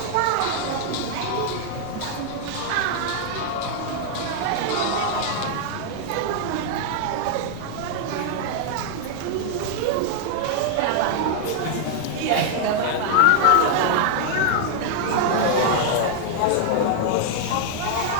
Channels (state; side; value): different; both; correlation 0.00